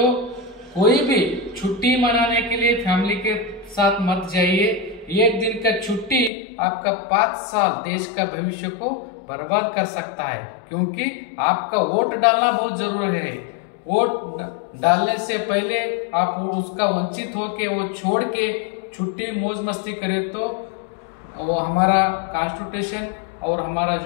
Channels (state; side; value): drops out; right; at 6.3 s